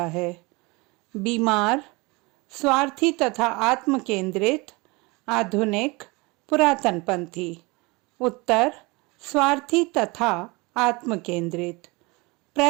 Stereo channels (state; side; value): quieter; left; 25.4 dB